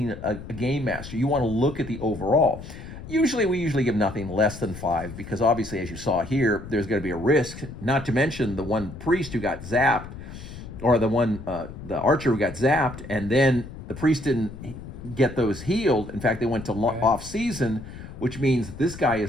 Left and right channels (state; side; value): noise; left; rumble, 12 dB below the sound